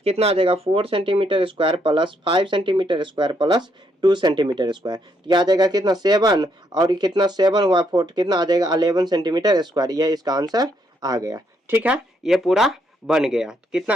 कितना आ जाएगा 4 centimetre square plus 5 centimetre square plus 2 centimetre square, तो यह आ जाएगा कितना 7, और कितना 7 हुआ 4, कितना आ जाएगा 11 सेंटीमीटर स्क्वायर, यह इसका आंसर आ गया, ठीक है। ये पूरा बन गया, कितना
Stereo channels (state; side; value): normal; both; correlation 0.74